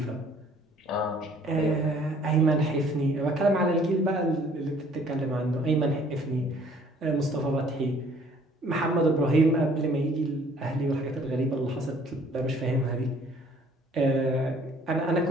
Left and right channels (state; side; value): normal; both; correlation 0.58